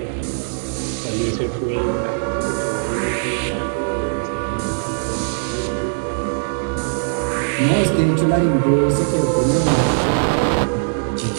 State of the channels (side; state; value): left; silent; digital silence